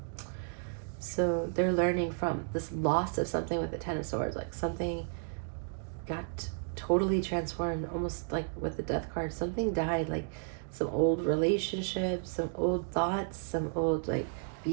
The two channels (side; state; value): left; silent; digital silence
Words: So they're learning from this loss of something with the 10 of Swords, like something got totally transformed, almost like with the Death card. Something died, like some old relationships, some old thoughts, some old like